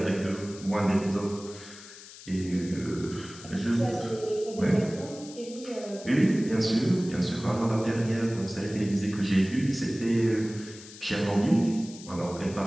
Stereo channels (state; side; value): noise; left; hiss, 17 dB below the sound